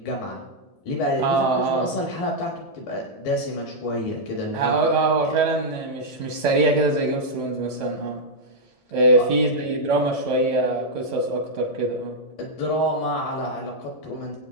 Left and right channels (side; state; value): right; late; 1.7 ms